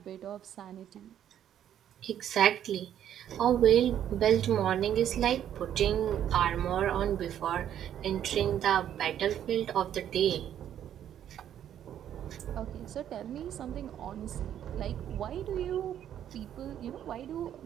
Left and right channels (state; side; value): quieter; left; 10.3 dB